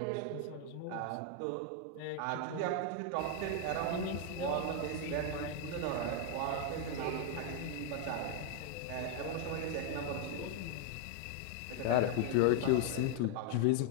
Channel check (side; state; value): both; different; correlation 0.00